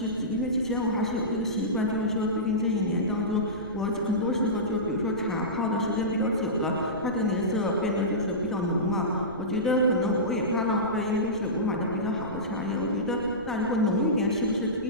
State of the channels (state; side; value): noise; right; rumble, 19 dB below the sound